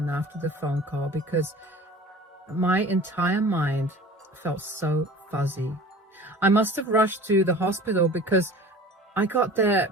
after the phone call because my entire mind felt so fuzzy. I must have rushed to the hospital because I got there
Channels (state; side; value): normal; both; correlation 0.42